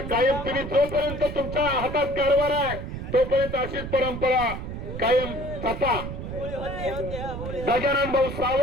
कायम तुम्ही जोपर्यंत तुमच्या हातात कारभार आहे तोपर्यंत अशीच परंपरा कायम जपा. गजानन भाऊ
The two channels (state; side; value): noise; right; rumble, 7 dB below the sound